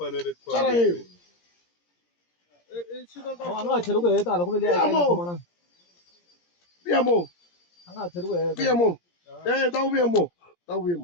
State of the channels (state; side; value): late; right; 17 ms